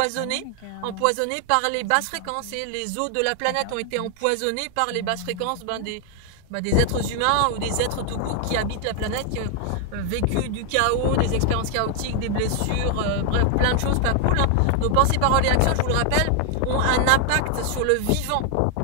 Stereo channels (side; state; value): both; different; correlation 0.00